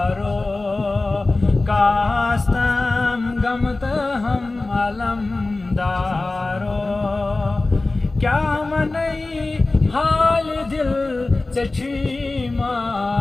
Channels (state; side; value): quieter; right; 3.2 dB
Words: कास्तम गमत हम अलमदारो, क्या मनई हाल दिल से छी